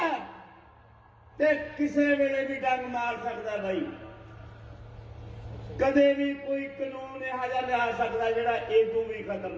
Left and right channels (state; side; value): identical; both; correlation 1.00